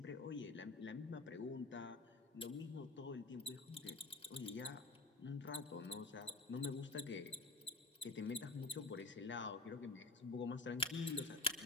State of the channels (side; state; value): right; quieter; 3.4 dB